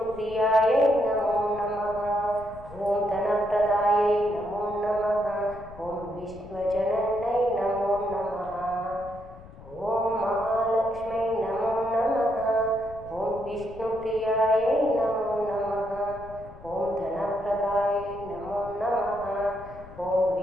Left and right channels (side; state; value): left; noise; rumble, 18 dB below the sound